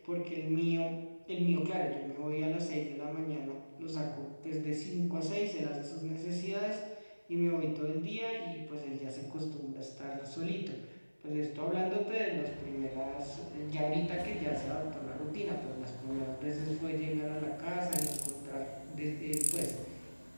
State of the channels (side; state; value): both; inverted; correlation -1.00